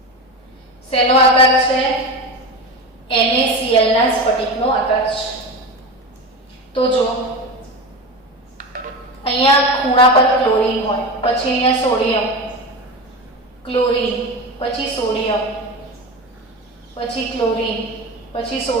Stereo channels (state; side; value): normal; both; correlation 0.24